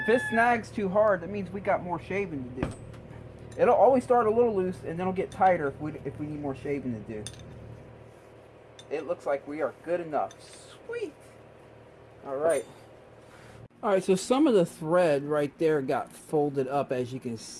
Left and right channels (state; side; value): identical; both; correlation 1.00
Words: it snags too hard, that means we got more shaving to do. It'll always start a little loose and then it'll get tighter if we need more shaving to do. It looks like we are good enough. Sweet. Alright. Alright, so some of the thread right there got folded up, as you can